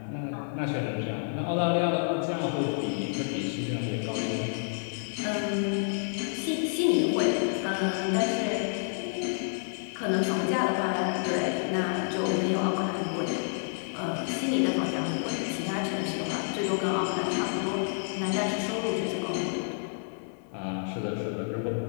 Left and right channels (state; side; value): silent; right; 58 dB below the other